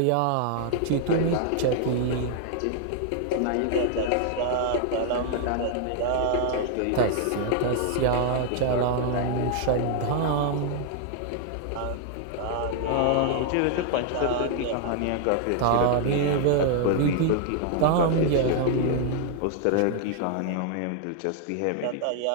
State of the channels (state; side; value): different; both; correlation 0.00